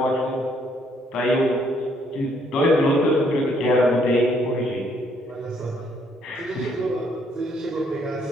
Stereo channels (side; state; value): both; normal; correlation 0.69